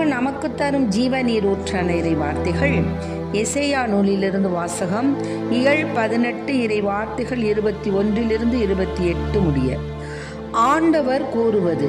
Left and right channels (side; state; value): both; identical; correlation 1.00